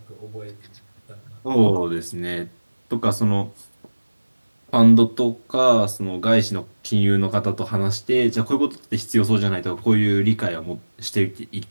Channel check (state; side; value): inverted; both; correlation -1.00